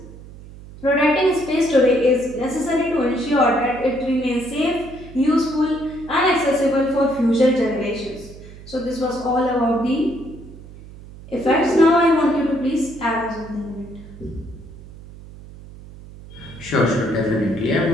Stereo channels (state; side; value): noise; right; hum, 17 dB below the sound